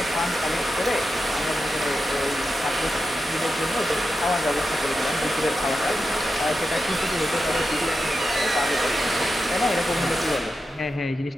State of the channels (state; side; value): normal; both; correlation 0.90